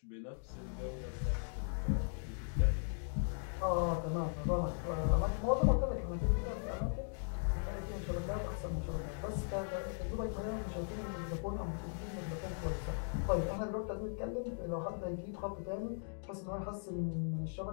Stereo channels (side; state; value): right; silent; digital silence